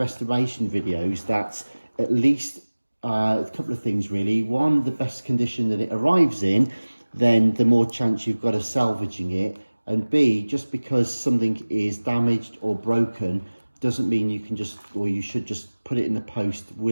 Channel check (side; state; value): both; inverted; correlation -1.00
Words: videos, that at least a couple of things really. One, the best condition that it arrives in, then the more chance you've got of salvaging it. And B, just because something is damaged or broken doesn't mean you can just, or you should just put it in the post